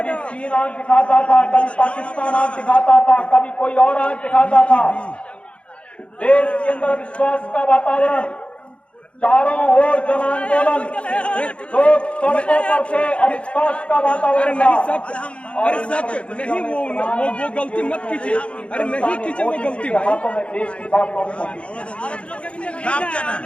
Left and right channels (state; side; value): late; right; 0.060 ms